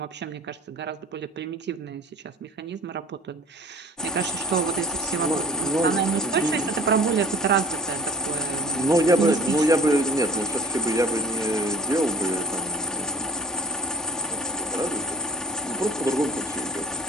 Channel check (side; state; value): both; normal; correlation 0.51